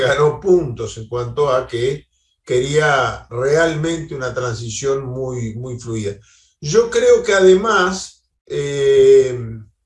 puntos en cuanto a que quería realmente una transición muy, muy fluida. Yo creo que además el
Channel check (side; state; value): both; identical; correlation 1.00